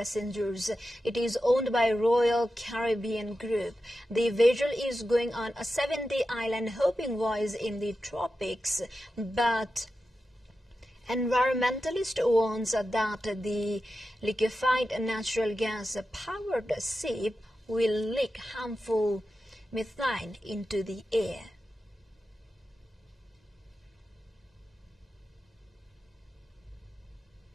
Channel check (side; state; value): both; normal; correlation 0.91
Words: It is owned by Royal Caribbean Group. The vessel is going on a 7-day island hopping voyage in the tropics, but environmentalists warn that the liquefied natural gas-powered ship will leak harmful methane into the air.